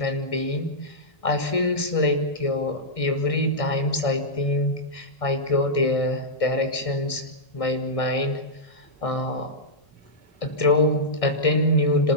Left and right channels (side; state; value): right; late; 1.6 ms